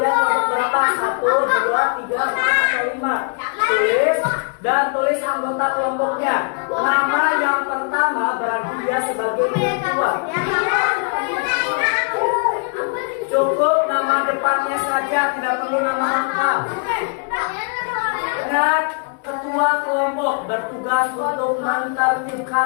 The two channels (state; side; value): quieter; right; 39.7 dB